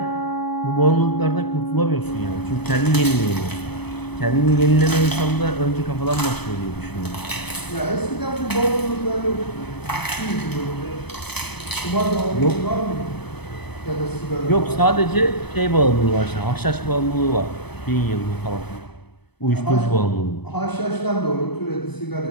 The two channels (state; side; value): late; right; 0.98 ms